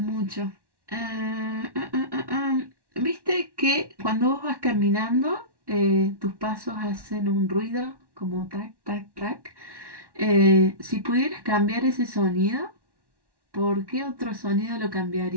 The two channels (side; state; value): left; late; 1.1 ms